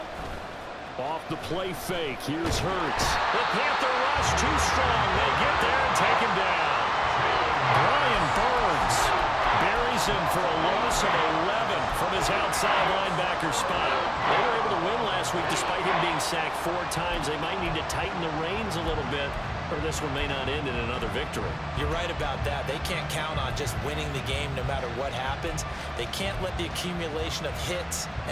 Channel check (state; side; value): identical; both; correlation 1.00